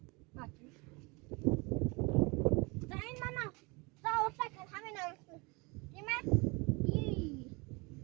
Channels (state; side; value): quieter; left; 27.5 dB